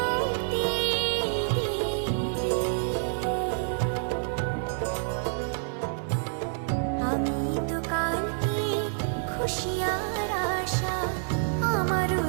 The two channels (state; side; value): silent; left; 59 dB below the other